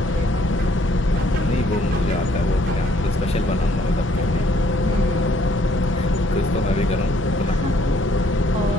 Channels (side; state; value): both; normal; correlation 0.64